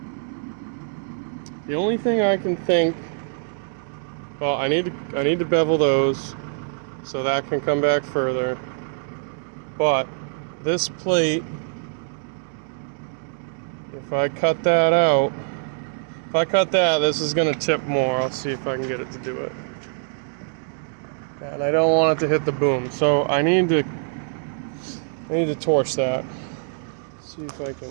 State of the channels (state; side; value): silent; left; digital silence